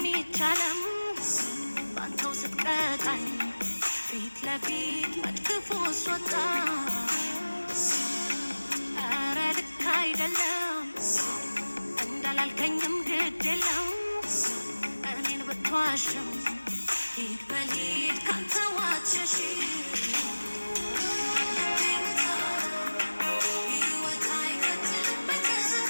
ይቻለም ባንተው ስትቀጣኝ ፊት ለፊት መድግፎ ስወጣ ኧረ ልክ አይደለም እንዳላልከኝም ግድ የለም እኔን ብትዋሽም ሂድ በሊድ ካንተ ዋትሸሺ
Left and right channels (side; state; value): both; inverted; correlation -1.00